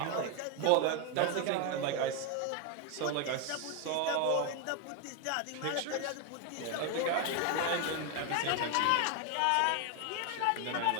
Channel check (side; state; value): both; different; correlation 0.01